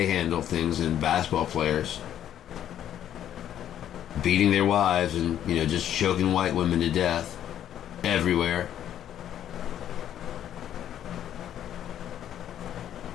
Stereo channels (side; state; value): right; quieter; 10.7 dB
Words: handle things, and basketball players beating their wives and, you know, just choking white women to death everywhere.